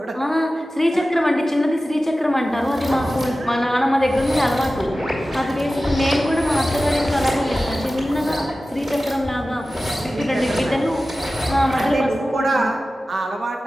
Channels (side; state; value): both; normal; correlation 0.95